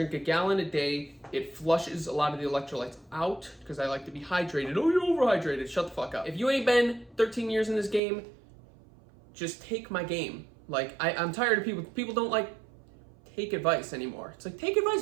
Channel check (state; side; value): drops out; left; at 8.0 s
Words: a gallon a day. It flushes a lot of the electrolytes out because I like to be hydrated. Oh, you're overhydrated. Shut the fuck up. If you ain't been 13 years in this game, just take my game. Like, I'm tired of people. People don't like take advice anymore. It's like, take advice,